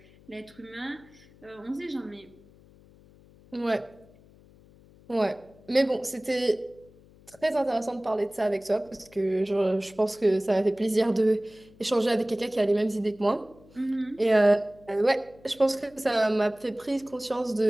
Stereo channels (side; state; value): left; noise; hum, 26 dB below the sound